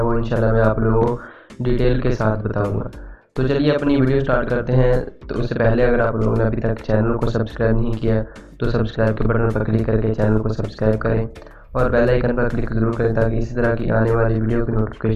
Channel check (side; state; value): both; identical; correlation 1.00